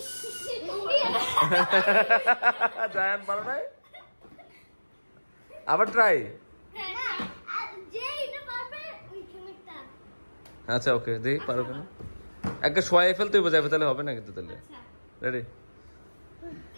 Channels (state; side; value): inverted; both; correlation -1.00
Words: জায়ান পারো নাই? আবার ট্রাই। আচ্ছা ওকে, দেখি পারো কেন। একটা শোয়াই ফেলতে হইব যাবে, তাহলে হবে না কিন্তু। তাহলে রেডি?